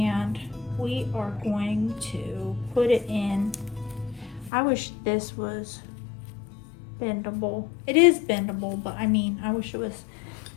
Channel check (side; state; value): right; drops out; at 4.5 s